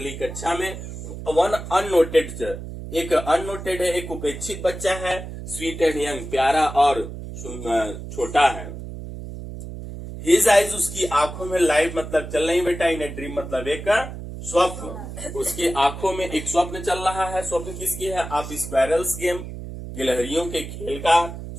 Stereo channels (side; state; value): right; noise; hum, 10 dB below the sound